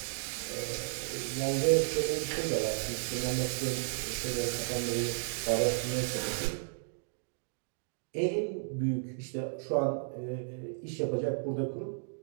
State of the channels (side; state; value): left; silent; digital silence